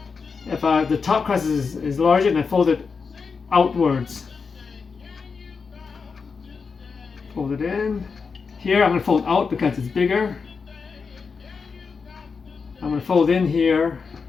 If the top crust is larger, then I fold it outwards. Fold it in. Here I'm going to fold out because it's bigger. I'm going to fold in here.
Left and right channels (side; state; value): right; quieter; 5.2 dB